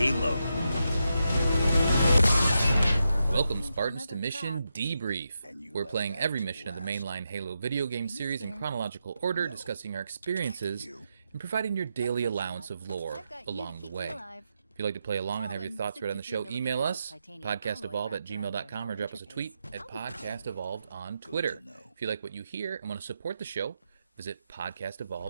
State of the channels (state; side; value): inverted; both; correlation -0.86